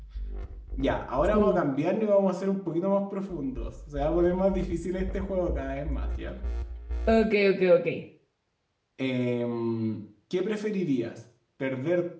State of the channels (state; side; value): identical; both; correlation 1.00